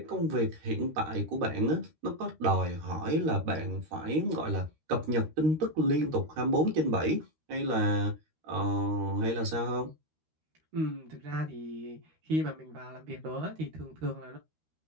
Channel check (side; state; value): left; late; 13 ms